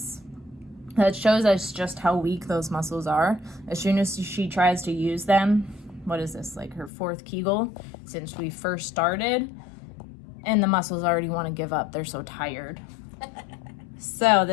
that shows us just how weak those muscles are. As soon as she tries to use them, what is this, like her 4th Kegel since we first started, and the muscles already want to give up. They're so tired. So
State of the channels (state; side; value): drops out; right; at 6.9 s